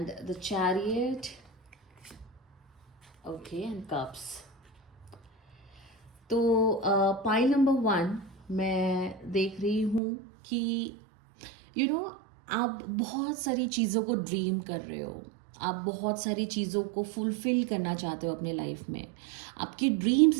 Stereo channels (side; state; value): left; drops out; at 10.0 s